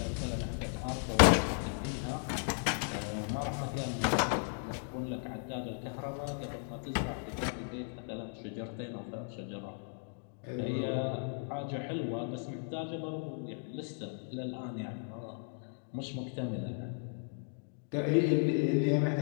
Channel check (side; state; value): right; silent; 54 dB below the other